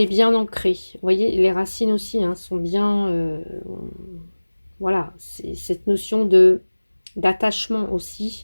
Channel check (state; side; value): inverted; both; correlation -1.00